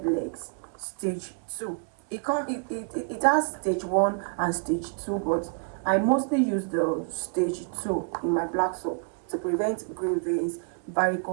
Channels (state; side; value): quieter; left; 40.0 dB